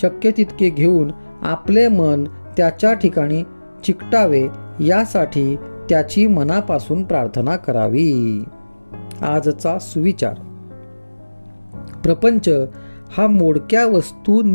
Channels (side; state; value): both; inverted; correlation -1.00